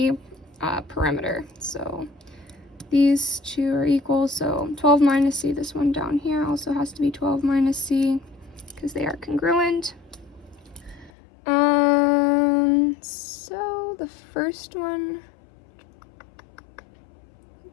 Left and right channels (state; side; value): drops out; right; at 11.1 s